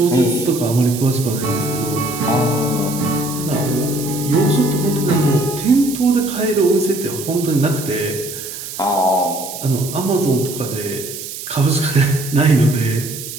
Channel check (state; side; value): noise; right; hiss, 9 dB below the sound